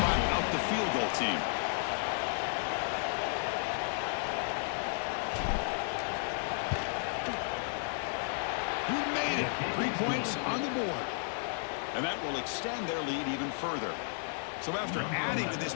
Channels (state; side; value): silent; right; digital silence